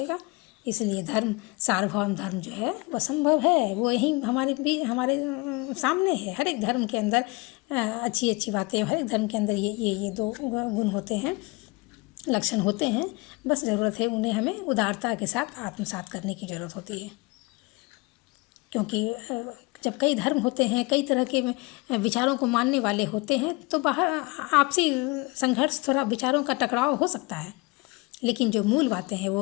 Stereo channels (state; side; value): quieter; right; 25.4 dB